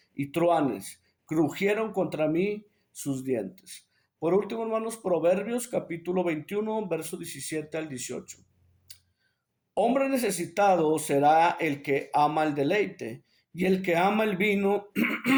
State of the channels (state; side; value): identical; both; correlation 1.00